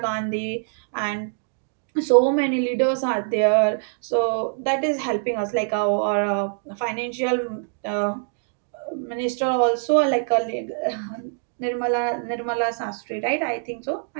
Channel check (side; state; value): left; silent; digital silence